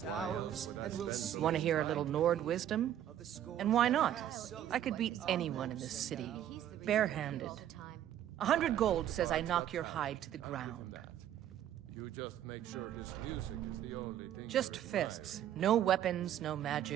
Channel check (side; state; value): left; quieter; 11.1 dB